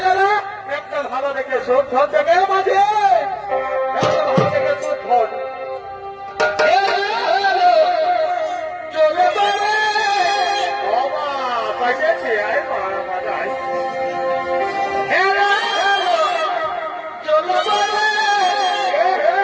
একটা ভালো দেখে শুদ্ধ থেকে মাঝে একটা ভালো দেখে শুদ্ধ চলে পাইছে আয় মাজায়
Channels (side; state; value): both; identical; correlation 1.00